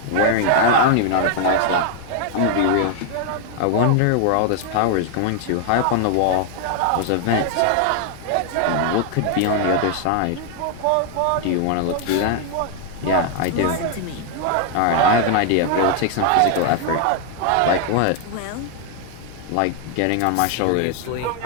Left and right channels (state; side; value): different; both; correlation 0.00